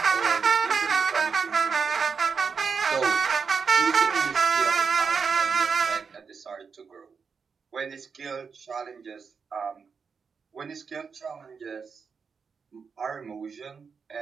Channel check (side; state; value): left; quieter; 5.7 dB